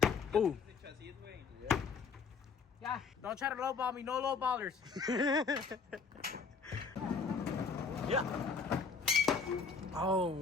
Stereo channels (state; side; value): quieter; right; 5.3 dB